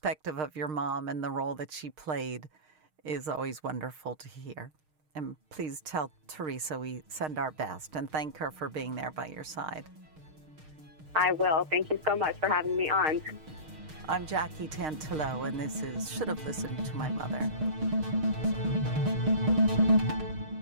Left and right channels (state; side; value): late; left; 6.5 ms